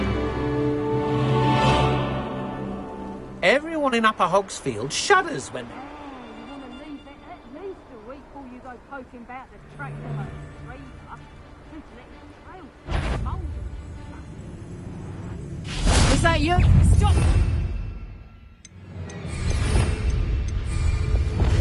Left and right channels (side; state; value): both; identical; correlation 1.00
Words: Everyone in Upper Hogsfield shudders when they... Is that you? Stop!